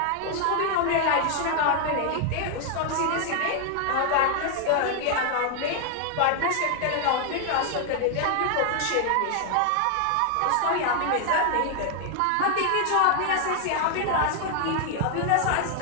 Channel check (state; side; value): different; both; correlation 0.00